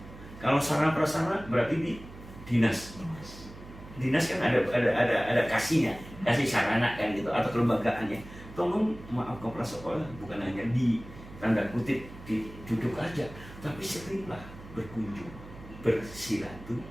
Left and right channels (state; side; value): noise; right; hum, 16 dB below the sound